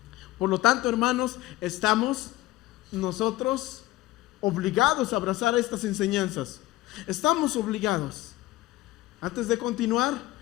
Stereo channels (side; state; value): right; quieter; 17.0 dB